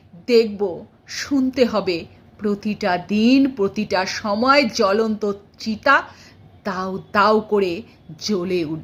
দেখব শুনতে হবে প্রতিটা দিন প্রতিটা সময় জ্বলন্ত চিতা দাউ দাউ করে জ্বলে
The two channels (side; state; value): both; identical; correlation 1.00